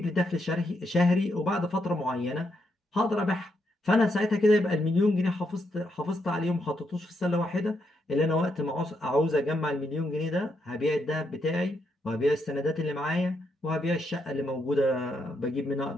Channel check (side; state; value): both; normal; correlation 0.80